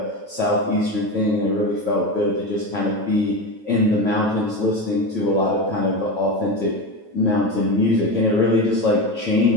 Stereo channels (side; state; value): left; late; 9.2 ms